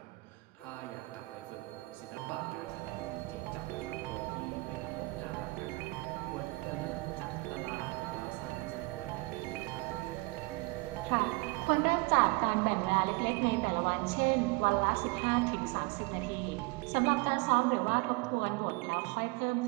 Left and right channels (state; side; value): quieter; left; 25.0 dB